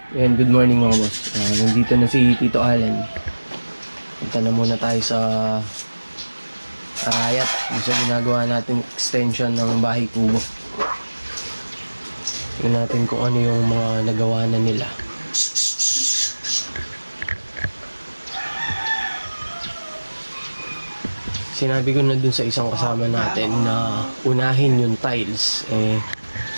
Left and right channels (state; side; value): inverted; both; correlation -1.00